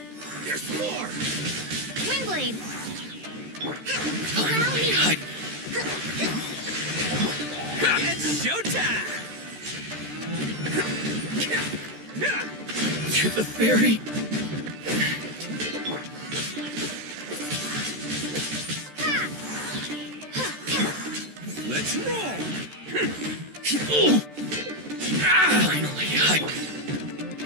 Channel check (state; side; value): late; left; 13 ms